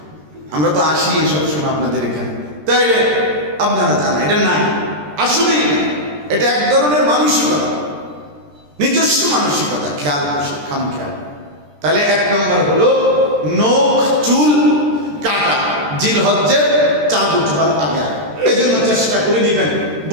আমরা তো আসি সবসময় আপনাদের এখানে, তাইলে আপনারা জানা এটা নাই, আসলেই না। এটা এক ধরনের মানসিকতা, নিজস্ব মানসিকতা, খেয়াল খাম খেয়াল। তাহলে 1 নম্বর হলো নখ চুল কাটা জিলহজ্জের 4 বুধবার আগে। এই জন্য চেষ্টা করে নিবেন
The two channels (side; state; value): left; late; 13 ms